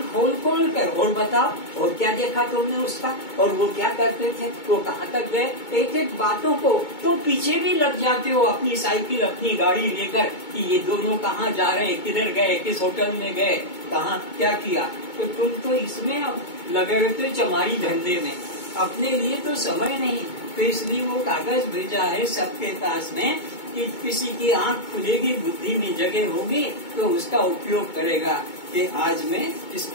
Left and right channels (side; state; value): right; late; 2.2 ms